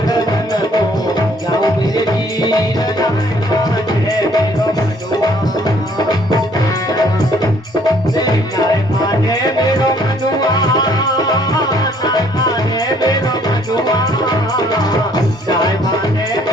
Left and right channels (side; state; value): both; normal; correlation 0.62